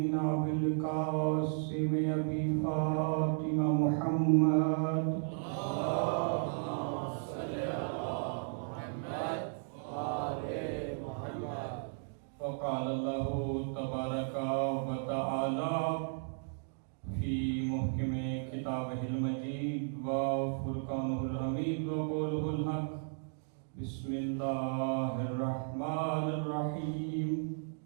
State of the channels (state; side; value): silent; left; digital silence